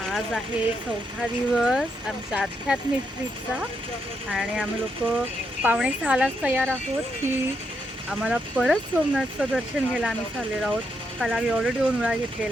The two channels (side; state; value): both; normal; correlation 0.80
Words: आहे 4था दिवस आमच्या आध्यात्मिक ट्रिपचा आणि आम्ही लोक 5:45लाच तयार आहोत की आम्हाला परत सोमनाथचं दर्शन घ्यायला आम्ही चाललेलो आहोत. काल आम्ही ऑलरेडी 2 वेळा